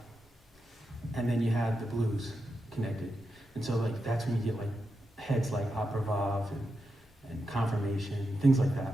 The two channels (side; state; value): both; normal; correlation 0.87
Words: and then you have the blues connected. And so like that's when you get like heads like Opera Vav and Confirmation, things like